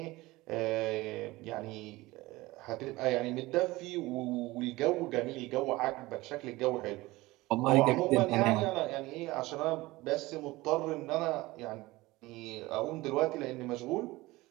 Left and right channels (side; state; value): left; quieter; 20.0 dB